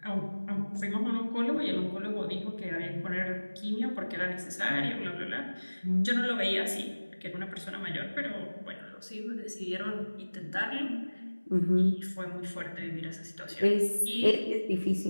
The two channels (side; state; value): both; inverted; correlation -1.00